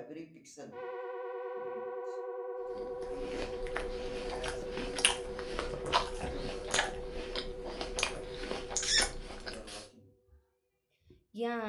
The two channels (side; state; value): both; identical; correlation 1.00